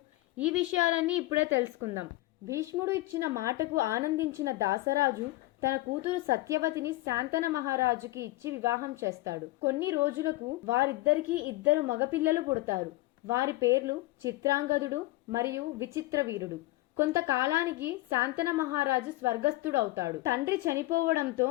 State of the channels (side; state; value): right; quieter; 18.9 dB